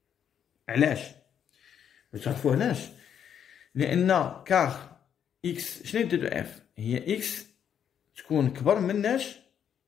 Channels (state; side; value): quieter; right; 8.6 dB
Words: علاش؟ باش تعرفو علاش؟ لأن كار إكس شنو هي دو إف؟ هي إكس تكون كبر مناش